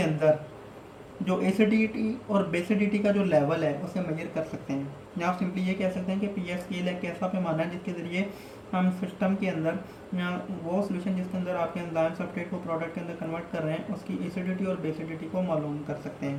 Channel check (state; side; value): identical; both; correlation 1.00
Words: जो एसिडिटी और बेसिडिटी का जो लेवल है उसे मेजर कर सकते हैं। या आप सिंपली ये कह सकते हैं कि पीएच स्केल एक ऐसा पैमाना है जिसके ज़रिए हम सिस्टम के अंदर या वो सोल्यूशन जिसके अंदर आपके एंजाइम सब्सट्रेट को प्रोडक्ट के अंदर कन्वर्ट कर रहे हैं उसकी एसिडिटी और बेसिडिटी को मालूम कर सकते